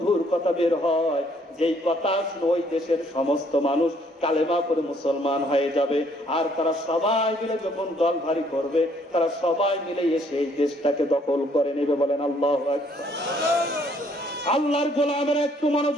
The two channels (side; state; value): both; normal; correlation 0.65